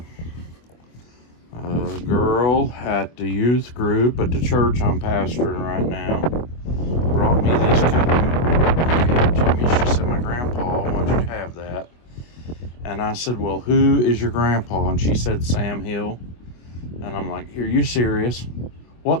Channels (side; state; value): right; late; 24 ms